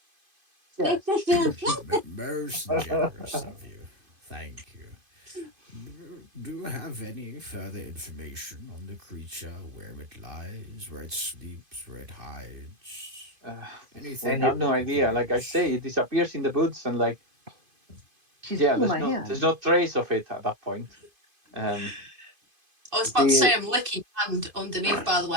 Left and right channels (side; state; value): left; late; 2.5 ms